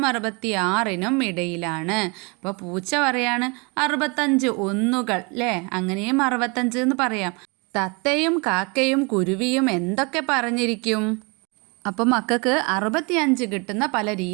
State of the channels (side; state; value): left; quieter; 30.1 dB